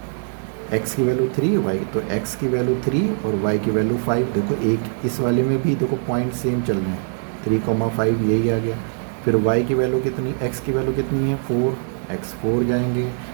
x की वैल्यू 3 y, तो x की वैल्यू 3 और y की वैल्यू 5, देखो एक इस वाले में भी देखो पॉइंट सेम चल रहे हैं, 3,5 यही आ गया। फिर y की वैल्यू कितनी, x की वैल्यू कितनी है 4, x 4 जाएंगे,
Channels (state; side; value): silent; left; 61 dB below the other